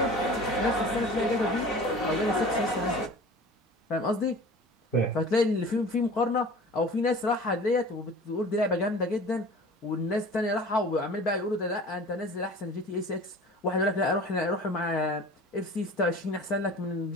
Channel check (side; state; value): both; normal; correlation 0.41